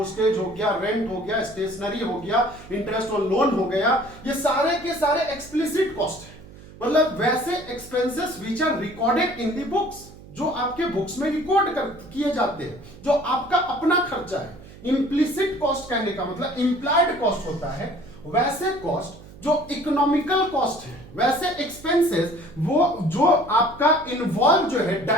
हो गया, रेंट हो गया, स्टेशनरी हो गया, इंटरेस्ट ऑन लोन हो गया, ये सारे के सारे एक्सप्लिसिट कॉस्ट है। मतलब वैसे expenses which are recorded in the books, जो आपके बुक्स में रिकॉर्ड किए जाते हैं, जो आपका अपना खर्चा है। इम्प्लिसिट कॉस्ट कहने का मतलब इंप्लाइड कॉस्ट होता है। वैसे कॉस्ट जो इकोनॉमिकल कॉस्ट है, वैसे एक्सपेंसेस वो जो आपका इन्वॉल्व जो है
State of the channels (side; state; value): right; noise; hum, 19 dB below the sound